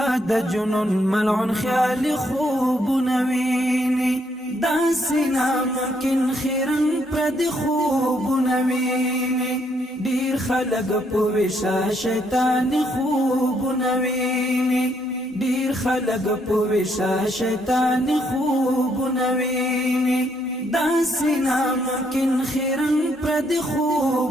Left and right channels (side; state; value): both; normal; correlation 0.72